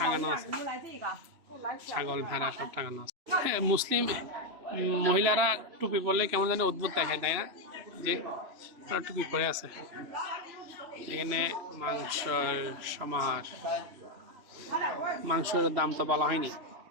আছে, ছাগল ভেড়া সব টাঙানো আছে। মুসলিম মহিলারা টুপি পরলে কেমন জানি অদ্ভুত দেখায়, তাই না? যে টুপি পরে আছে। এখানে মাংসের সমাহার, মাংসের দাম তো বলা হয়নি।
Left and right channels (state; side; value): late; left; 3.0 ms